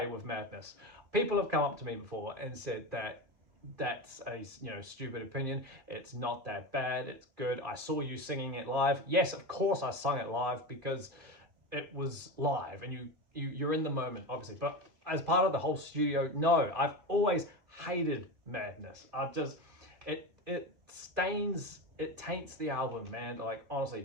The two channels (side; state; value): left; late; 2.5 ms